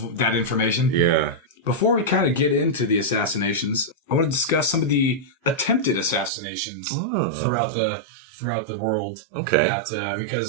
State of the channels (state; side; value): drops out; left; at 6.3 s